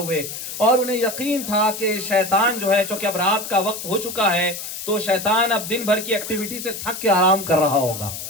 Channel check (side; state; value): left; noise; hiss, 8 dB below the sound